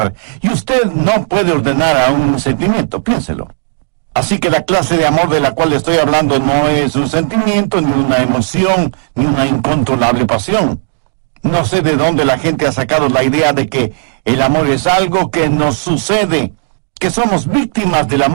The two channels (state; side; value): silent; left; digital silence